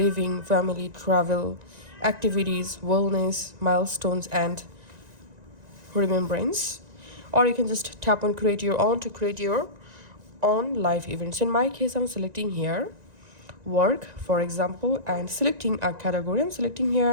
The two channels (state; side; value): late; left; 1.9 ms